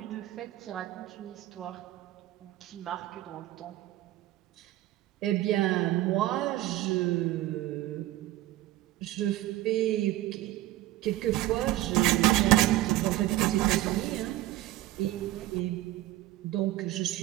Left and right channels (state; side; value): quieter; left; 15.3 dB